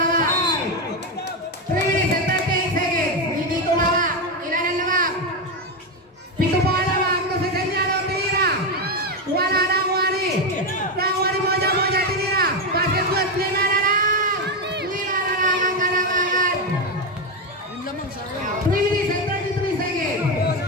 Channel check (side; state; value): both; normal; correlation 0.10